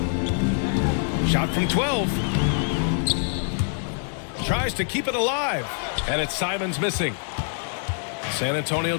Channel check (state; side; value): silent; right; digital silence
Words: Shot from 12. Tries to keep it alive. And it's Simons missing. San Antonio